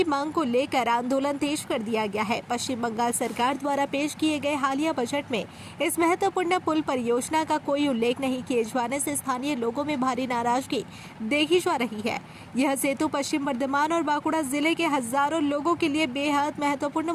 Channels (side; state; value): both; identical; correlation 1.00